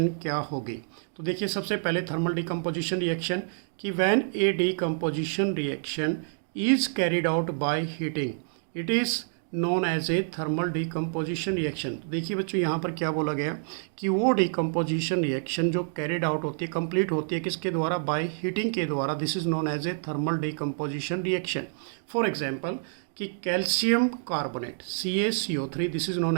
क्या होगी। तो देखिए सबसे पहले थर्मल डीकम्पोजिशन रिएक्शन कि when a decomposition reaction is carried out by heating it is known as a thermal decomposition reaction. देखिए बच्चों यहाँ पर क्या बोला गया कि वो डीकम्पोजिशन रिएक्शन जो कैरिड आउट होती है, कंप्लीट होती है किसके द्वारा, बाय हीटिंग के द्वारा, this is known as a thermal decomposition reaction. For example कि calcium carbonate CaCO3, this is known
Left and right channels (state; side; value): silent; left; digital silence